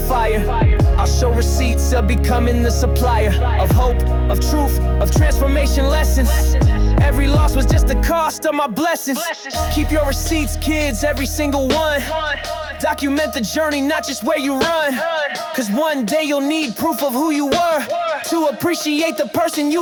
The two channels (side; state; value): both; identical; correlation 1.00